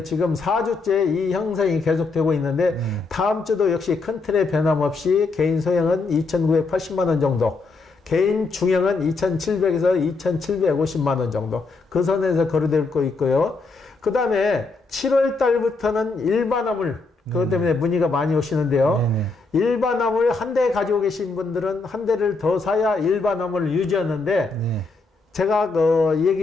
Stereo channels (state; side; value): quieter; right; 3.8 dB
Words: 지금 4주째 이 형성이 계속되고 있는데 다음 주도 역시 큰 틀의 변함없이 개인 소형은 2,980만원 정도, 개인 중형은 2,700에서 2,750만원 정도 그 선에서 거래될 거 있고요. 그 다음에 7월 달부터는 일반 화물, 그것 때문에 문의가 많이 오시는데요. 일반 화물 한 대 가지고 계신 분들은 한 대를 더 사야 일반 화물을 유지하는데 제가